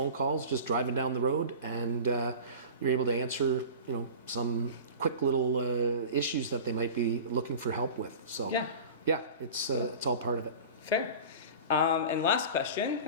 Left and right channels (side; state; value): both; inverted; correlation -0.35